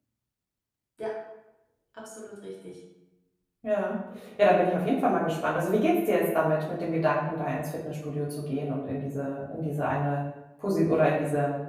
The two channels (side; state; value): both; identical; correlation 1.00